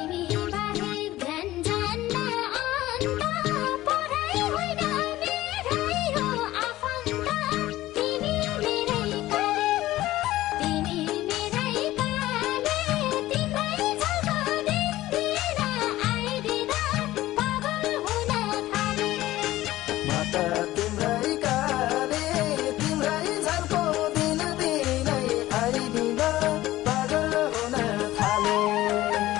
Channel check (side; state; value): right; quieter; 16.1 dB